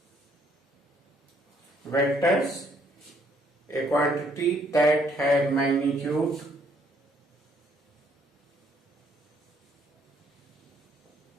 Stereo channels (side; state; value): both; normal; correlation 0.67